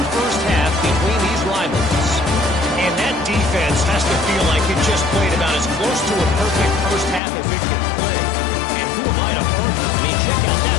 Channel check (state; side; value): drops out; right; at 7.2 s